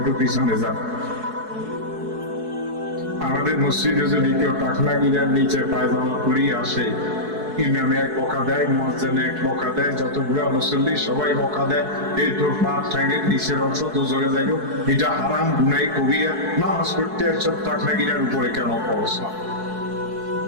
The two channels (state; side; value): late; left; 4.7 ms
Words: একটু পিছনে যান। আমাদের মসজিদে যদি কেউ টাকনা গিরার নিচে পায়জামা পরিয়ে আসে, ইমামে এক বকা দেয়, মুয়াজ্জিনে এক বকা দেয়, যতগুলা মুসল্লি সবাই বকা দেয়, এই তোর পা ঠ্যাঙের নিচের অংশ দোজরে যাইব, এটা হারাম, গুনাহ কবিরা, নামাজ পড়তে সব টাকনা গিরার উপরে কেন পড়ছ?